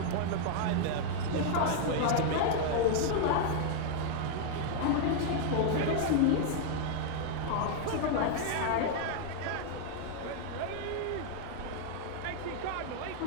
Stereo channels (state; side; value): different; both; correlation 0.00